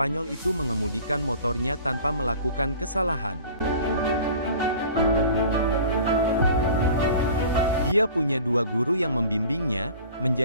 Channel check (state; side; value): inverted; both; correlation -0.44